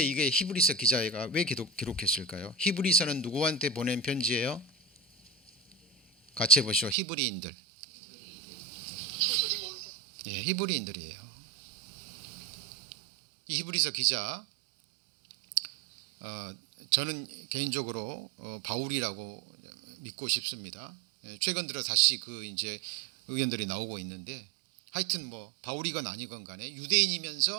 이게 히브리서 기자가 왜 기록했을까요? 히브리서는 누구한테 보낸 편지예요? 같이 해보시죠. 히브리인들. 예, 히브리인들이에요. 이 히브리서 기자, 저는 개인적으로 바울이라고 믿고 싶습니다. 최근 들어 다시 그 이제 의견들이 나오고 있는데, 하여튼 뭐 바울이건 아니건 간에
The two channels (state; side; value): drops out; left; at 7.0 s